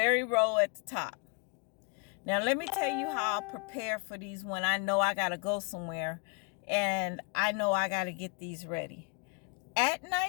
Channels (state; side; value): quieter; right; 36.0 dB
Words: row at the top. Now let me tell you how I'll prepare for these when I know I gotta go somewhere and I know I gotta get these ready. At